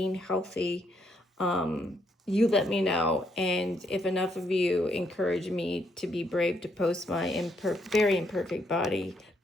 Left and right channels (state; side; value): normal; both; correlation 0.74